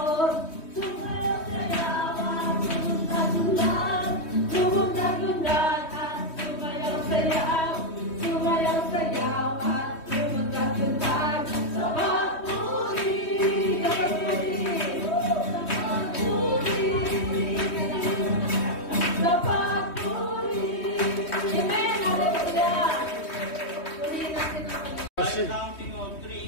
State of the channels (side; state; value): right; late; 3.1 ms